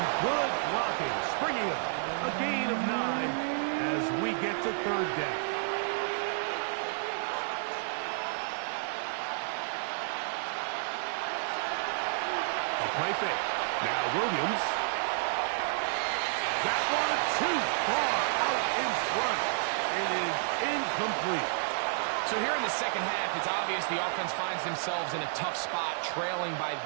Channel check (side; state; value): left; silent; 57 dB below the other